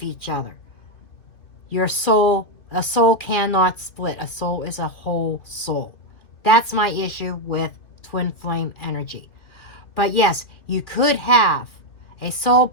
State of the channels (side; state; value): right; late; 2.6 ms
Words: each other. A soul cannot split. A soul is a whole soul. That's my issue with twin flame energy. But yes, you could have a soul